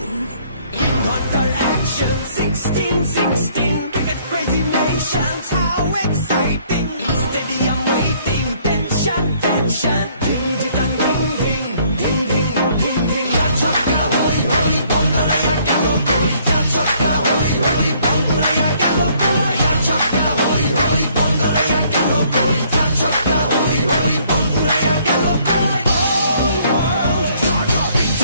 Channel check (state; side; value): inverted; both; correlation -0.63